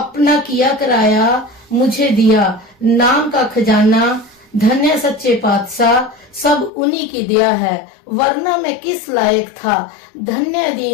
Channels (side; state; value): right; drops out; at 6.7 s